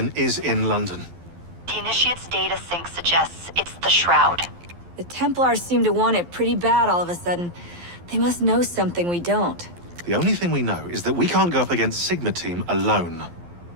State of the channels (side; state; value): left; late; 12 ms